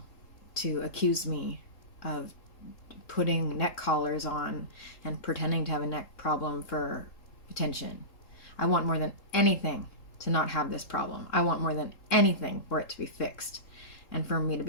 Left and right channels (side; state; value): right; late; 3.8 ms